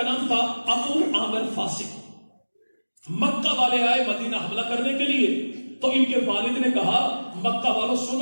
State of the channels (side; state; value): both; inverted; correlation -1.00